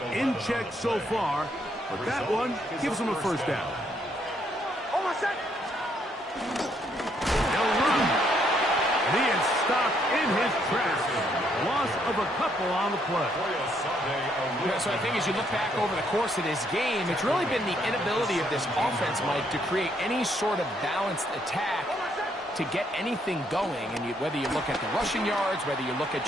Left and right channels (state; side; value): normal; both; correlation 0.71